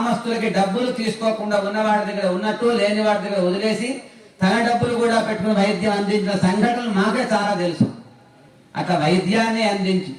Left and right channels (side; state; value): both; identical; correlation 1.00